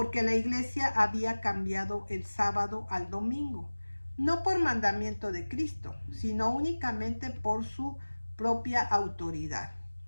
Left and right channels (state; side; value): inverted; both; correlation -1.00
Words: la Iglesia había cambiado el sábado al domingo, no por mandamiento de Cristo, sino únicamente por su propia autoridad.